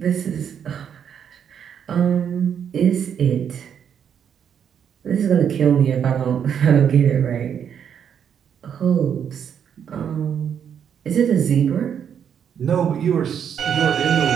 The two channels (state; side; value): quieter; left; 8.2 dB